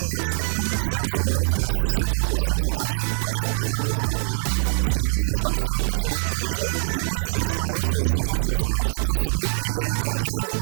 7 ans. 7 comme ans ça, ouais, ça fait 6-7 ans que je stream sur Twitch. Ok. Voilà, ça fait 1 an que je suis partenaire. Parce qu'avant, je suis pas assez impressionnant pour les gens. Et du coup, c'est l'expérience et la sagesse qui ont fait le reste. Putain, c'est beau. Et t'as pas une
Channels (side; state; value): left; silent; 63 dB below the other